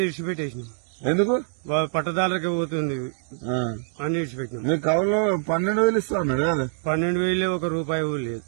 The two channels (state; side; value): silent; left; digital silence